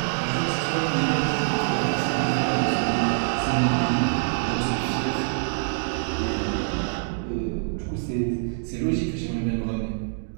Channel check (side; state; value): left; silent; digital silence